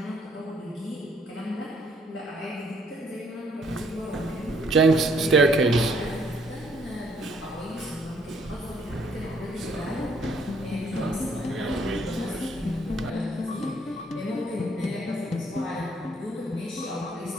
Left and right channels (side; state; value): both; normal; correlation 0.66